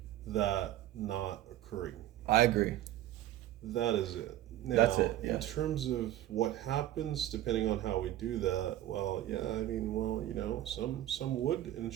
that not occurring. I agree. That is it. Now, That's it, yeah. in terms of what happens, depending on how we do that, some would and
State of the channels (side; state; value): left; quieter; 13.5 dB